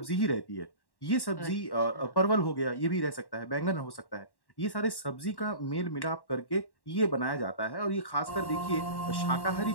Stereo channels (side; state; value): right; late; 1.1 ms